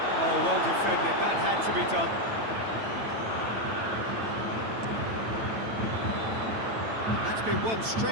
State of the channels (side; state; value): left; late; 8.9 ms